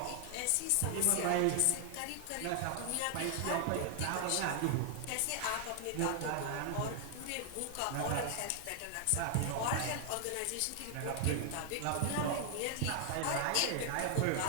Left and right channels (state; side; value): different; both; correlation 0.00